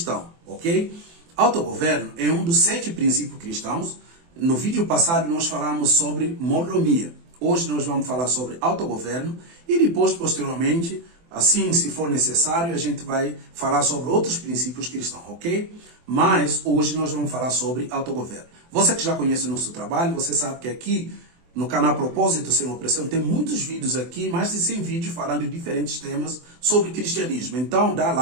ok? Autogoverno é um dos 7 princípios cristãos. No vídeo passado nós falamos sobre mordomia. Hoje nós vamos falar sobre autogoverno e depois, posteriormente, assim, se for necessário, a gente vai falar sobre outros princípios cristãos, ok? Mas hoje nós vamos falar sobre autogoverno. Você que já conhece o nosso trabalho, você sabe que aqui no canal Propósito Sem Opressão tem muitos vídeos aqui, mais de 100 vídeos falando de diferentes temas sobre cristianismo. Então dá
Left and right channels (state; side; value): late; left; 24 ms